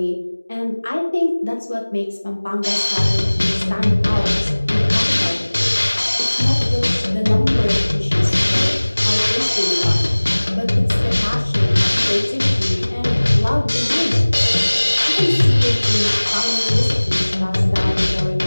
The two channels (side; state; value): both; inverted; correlation -1.00